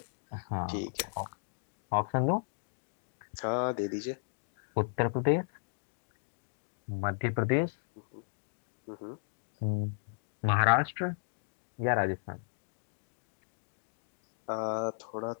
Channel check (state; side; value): silent; right; digital silence